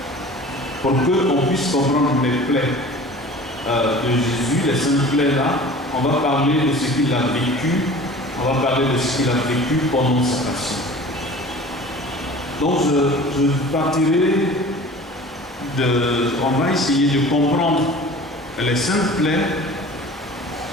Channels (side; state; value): both; normal; correlation 0.42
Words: Pour qu'on puisse comprendre les plaies de Jésus, les saintes plaies là, on va parler de ce qu'il a vécu, on va parler de ce qu'il a vécu pendant sa passion. Donc je partirai on va essayer de comprendre les saintes plaies